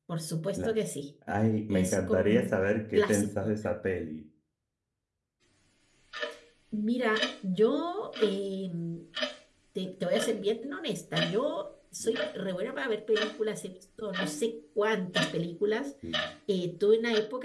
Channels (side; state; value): both; identical; correlation 1.00